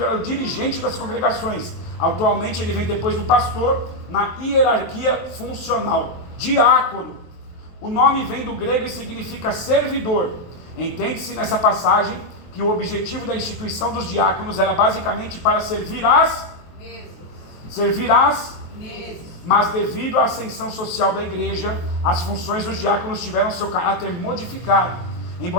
era o dirigente das congregações. Atualmente ele vem depois do pastor na hierarquia funcional. Diácono, o nome vem do grego e significa servidor. Entende-se nessa passagem que o objetivo da instituição dos diáconos era basicamente para servir as mesas. Mas devido à ascensão social da igreja, as funções dos diáconos tiveram seu caráter modificado.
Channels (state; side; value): late; right; 23 ms